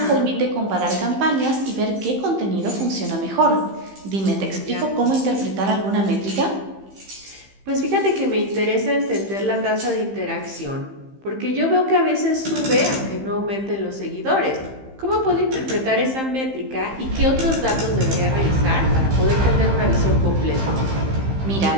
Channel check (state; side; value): late; left; 15 ms